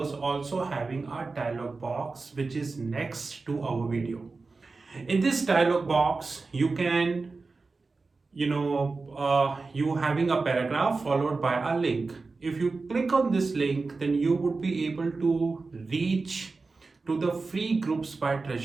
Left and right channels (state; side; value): quieter; left; 4.0 dB